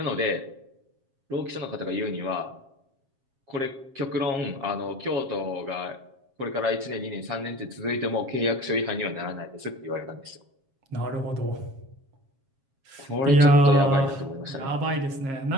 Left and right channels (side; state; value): left; late; 7.4 ms